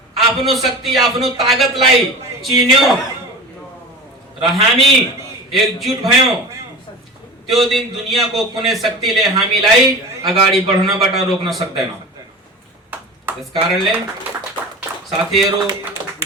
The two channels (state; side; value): normal; both; correlation 0.33